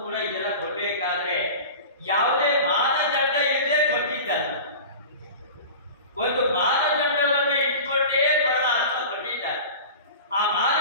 ಕೂಡ ಇದೆಲ್ಲ ಕೊಡಬೇಕಾದ್ರೆ ಯಾವುದೇ ಮಾನದಂಡ ಇಲ್ಲದೆ ಕೊಟ್ಟಿದ್ದಲ್ಲ. ಒಂದು ಮಾನದಂಡವನ್ನು ಇಟ್ಕೊಂಡೇ ಪರಮಾತ್ಮ ಕೊಟ್ಟಿದ್ದಾರೆ. ಆ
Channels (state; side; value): inverted; both; correlation -0.35